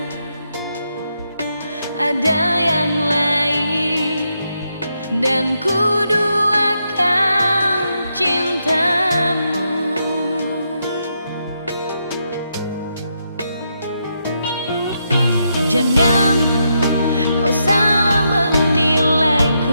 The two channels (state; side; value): inverted; both; correlation -0.81